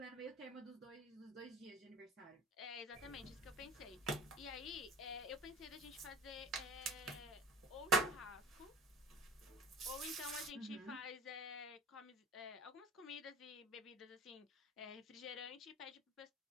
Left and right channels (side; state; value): both; normal; correlation 0.39